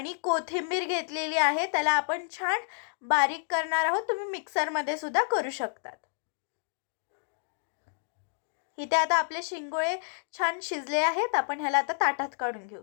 कोथिंबीर घेतलेली आहे. त्याला आपण छान बारीक करणार आहोत. तुम्ही मिक्सरमध्ये सुद्धा करू शकतात. इथे आता आपले शिंगोळे छान शिजले आहेत. आपण ह्याला आता ताटात काढून घेऊ.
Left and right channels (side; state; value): right; silent; digital silence